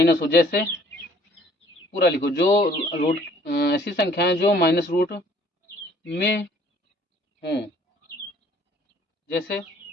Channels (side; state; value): both; normal; correlation 0.57